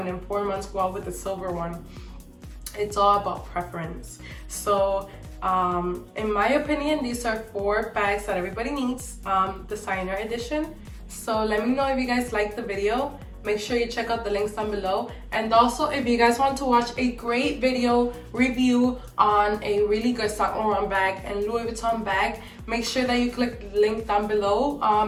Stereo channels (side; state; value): both; identical; correlation 1.00